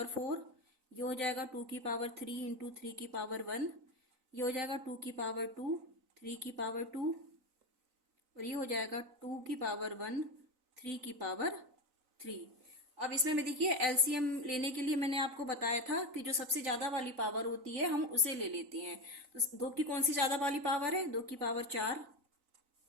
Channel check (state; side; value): late; left; 3.9 ms